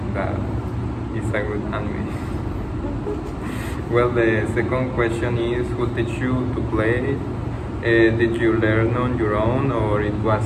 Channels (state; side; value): identical; both; correlation 1.00